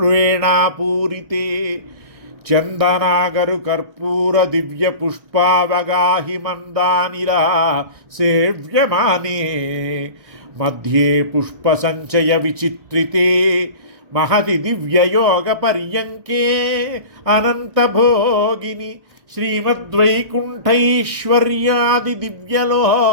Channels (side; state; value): left; late; 1.4 ms